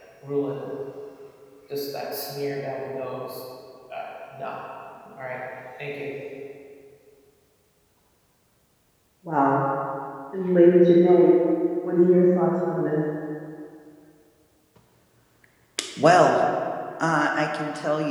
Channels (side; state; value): both; identical; correlation 1.00